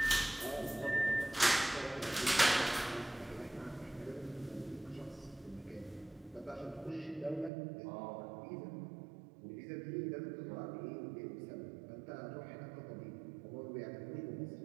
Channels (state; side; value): drops out; left; at 7.5 s